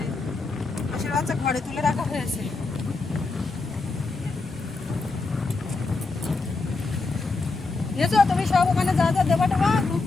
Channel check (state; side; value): quieter; right; 3.8 dB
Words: হাঁসের বাচ্চা ঘরে তুলে রাখা হয়েছে। বুঝেছো, তুমি সব ওখানে যা যা দেবা টেবা, দুধ